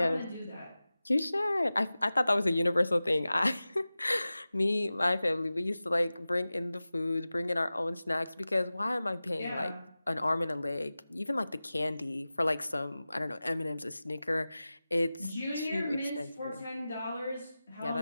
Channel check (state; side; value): inverted; both; correlation -0.96